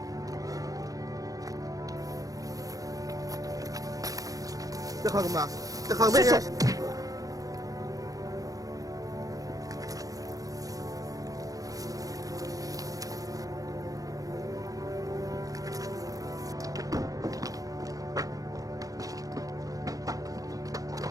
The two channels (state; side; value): late; left; 0.17 ms